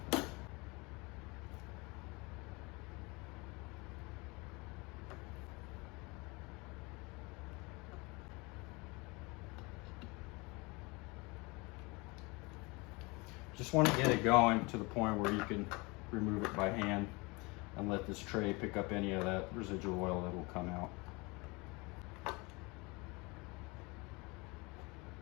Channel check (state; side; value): quieter; right; 26.4 dB